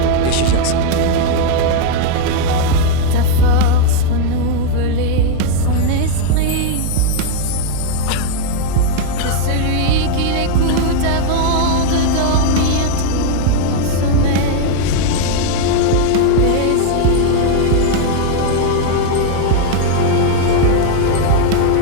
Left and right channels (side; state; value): both; different; correlation 0.00